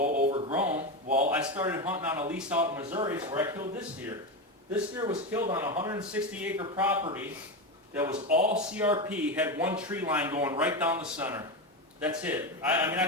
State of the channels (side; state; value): both; normal; correlation 0.15